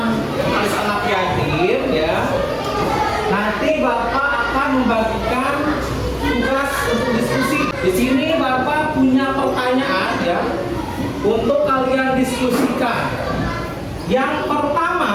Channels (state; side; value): identical; both; correlation 1.00